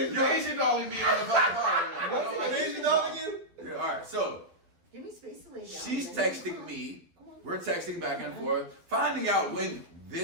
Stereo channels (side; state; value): left; late; 11 ms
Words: You're dog. Asian dogging me on the fucking car right now. I don't like Asian dogging you? Yeah, all right, so Give me space to lay down. she's texting me. We're texting back and forth, finding out when